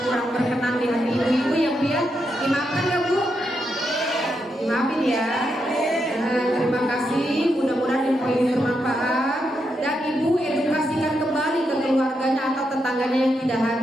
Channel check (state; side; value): normal; both; correlation 0.83